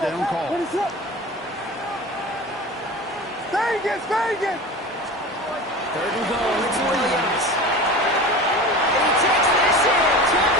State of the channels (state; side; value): normal; both; correlation 0.33